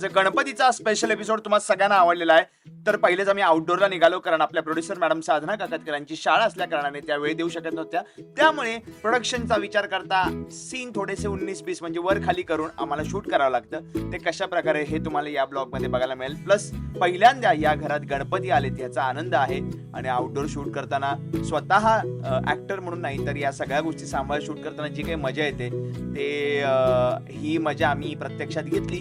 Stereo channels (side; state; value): both; identical; correlation 1.00